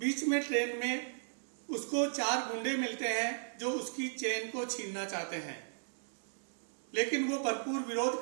में ट्रेन में उसको 4 गुंडे मिलते हैं जो उसकी चेन को छीनना चाहते हैं, लेकिन वो भरपूर विरोध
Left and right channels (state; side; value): silent; left; digital silence